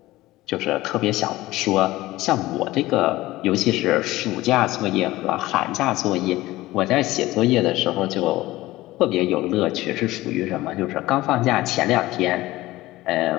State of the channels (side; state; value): right; quieter; 17.7 dB